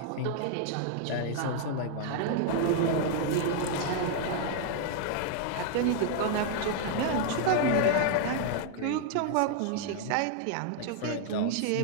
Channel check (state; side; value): different; both; correlation 0.00